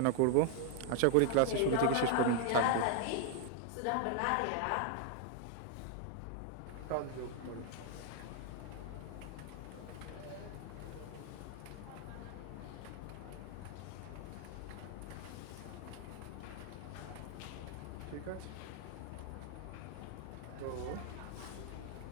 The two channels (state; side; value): different; both; correlation 0.00